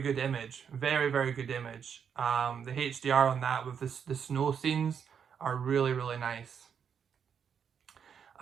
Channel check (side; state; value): left; quieter; 7.4 dB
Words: good image, very good image. The HDR on that with the snow scenes are really nice.